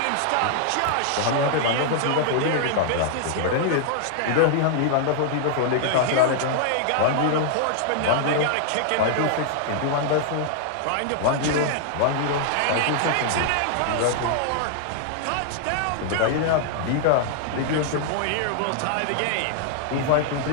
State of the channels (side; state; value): both; different; correlation 0.00